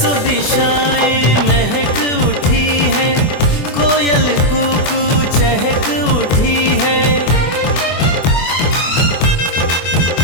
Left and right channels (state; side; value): late; right; 24 ms